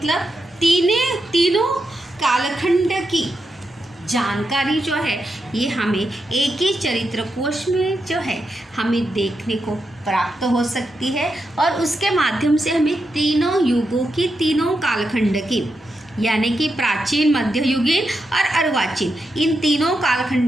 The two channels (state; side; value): normal; both; correlation 0.86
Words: तीनों कालखंड की जानकारी जो है ये हमें एक ही चरित्र कोश में जो है हमें देखने को प्राप्त हो सकती है और उसके माध्यम से हमें तीनों युगों की, तीनों कालखंड की, यानी कि प्राचीन, मध्ययुगीन और अर्वाचीन, इन तीनों